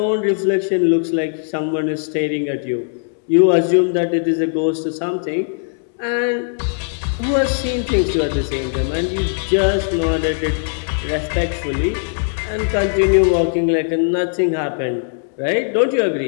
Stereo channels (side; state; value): right; silent; digital silence